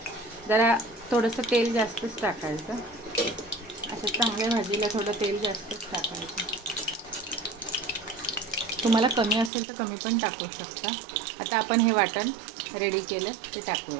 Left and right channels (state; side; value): drops out; left; at 9.5 s